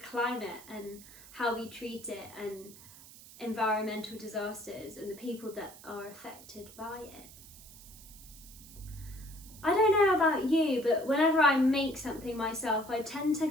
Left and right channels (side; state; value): right; noise; hiss, 19 dB below the sound